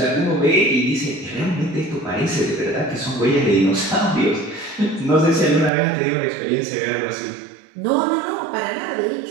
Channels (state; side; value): drops out; left; at 5.7 s